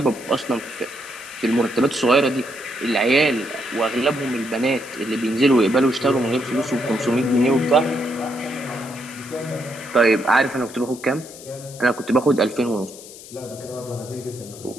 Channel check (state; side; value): noise; left; hiss, 17 dB below the sound